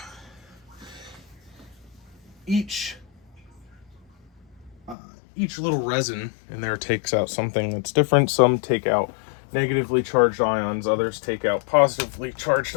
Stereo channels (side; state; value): right; drops out; at 5.0 s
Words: each little resin in there takes out something that's different. Some take out negatively charged ions, others take out positively charged